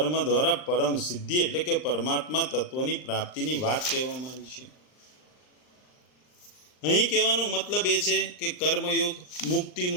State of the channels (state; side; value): late; right; 39 ms